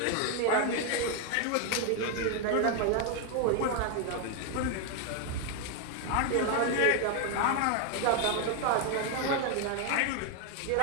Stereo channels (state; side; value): different; both; correlation 0.01